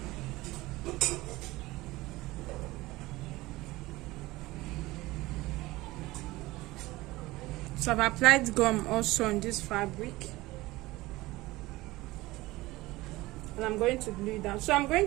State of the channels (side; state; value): left; quieter; 19.5 dB